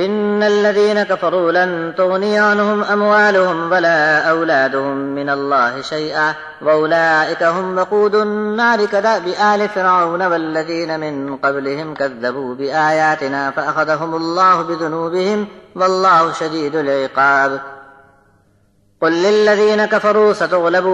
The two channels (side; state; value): both; identical; correlation 1.00